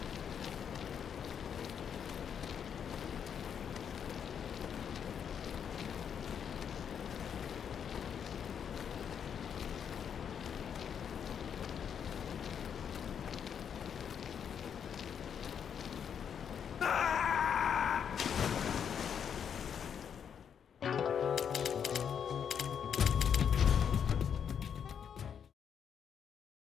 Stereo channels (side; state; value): right; quieter; 7.8 dB